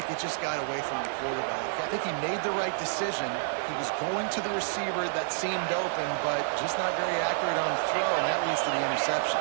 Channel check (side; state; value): left; silent; 59 dB below the other